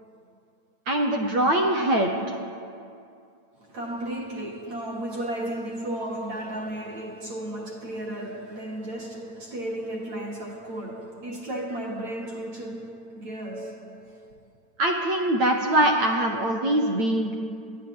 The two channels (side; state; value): left; late; 8.9 ms